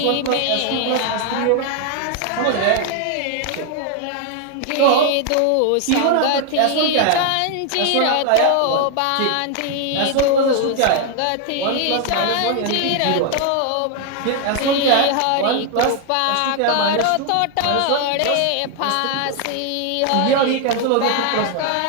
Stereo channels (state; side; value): different; both; correlation 0.00